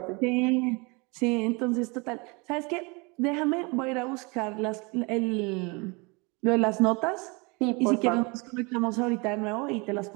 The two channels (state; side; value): quieter; left; 28.7 dB